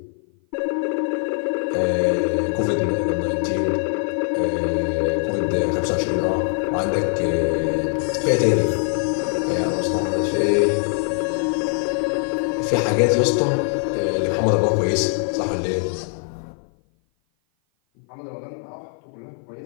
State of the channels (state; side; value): silent; right; 56 dB below the other